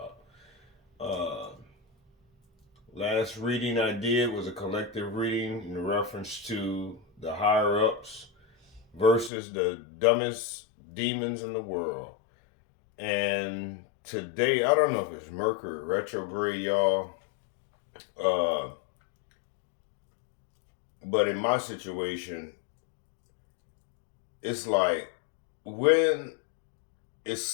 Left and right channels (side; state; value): right; drops out; at 9.3 s